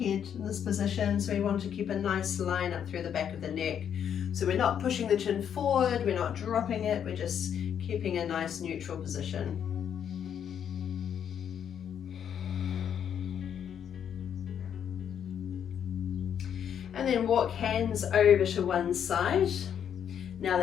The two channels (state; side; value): quieter; right; 8.7 dB